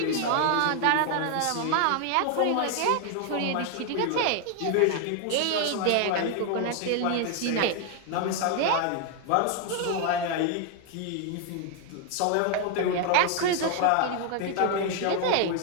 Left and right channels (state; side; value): different; both; correlation 0.00